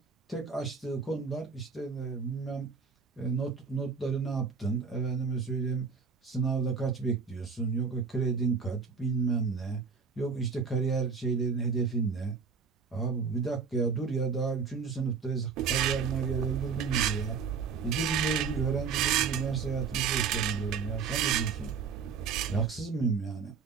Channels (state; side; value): quieter; left; 5.7 dB